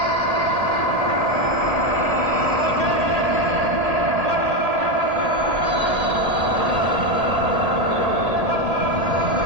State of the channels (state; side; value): late; left; 1.8 ms